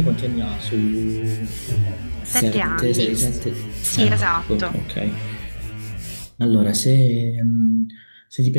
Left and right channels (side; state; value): both; inverted; correlation -1.00